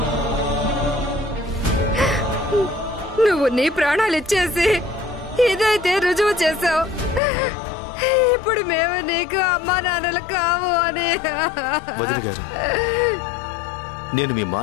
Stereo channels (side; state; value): right; drops out; at 7.2 s